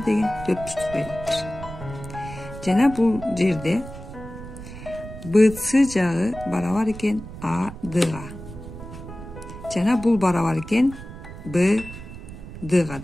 4 бурчтук берилиптир. Жана бул жерде BC жагы барабар экен ADга. Жана бул барабар экен BDга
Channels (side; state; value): right; noise; rumble, 13 dB below the sound